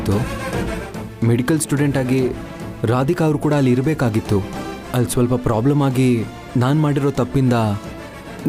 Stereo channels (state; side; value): identical; both; correlation 1.00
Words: ಮೆಡಿಕಲ್ ಸ್ಟೂಡೆಂಟ್ ಆಗಿ ರಾಧಿಕಾ ಅವರು ಕೂಡ ಅಲ್ಲಿ ಇರಬೇಕಾಗಿತ್ತು. ಅಲ್ಲಿ ಸ್ವಲ್ಪ ಪ್ರಾಬ್ಲಮ್ ಆಗಿ ನಾನು ಮಾಡಿರೋ ತಪ್ಪಿಂದ